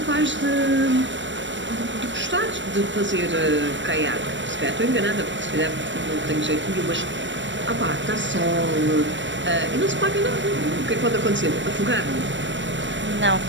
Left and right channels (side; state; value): left; late; 0.54 ms